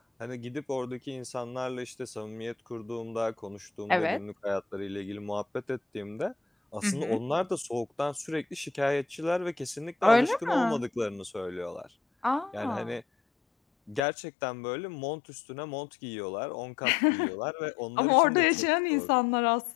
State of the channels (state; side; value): drops out; right; at 14.0 s